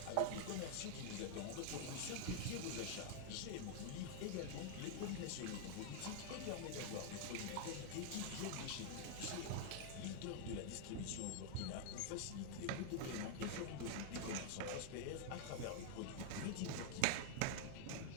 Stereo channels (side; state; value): both; different; correlation 0.00